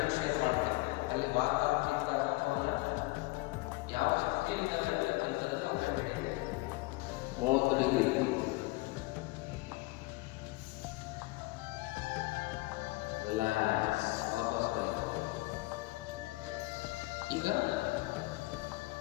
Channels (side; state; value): right; quieter; 22.3 dB